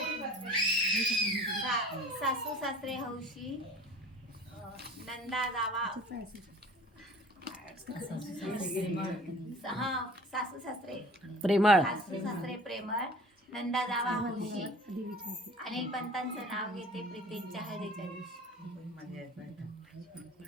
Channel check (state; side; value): normal; both; correlation 0.45